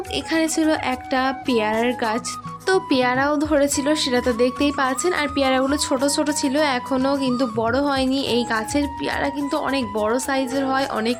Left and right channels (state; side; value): identical; both; correlation 1.00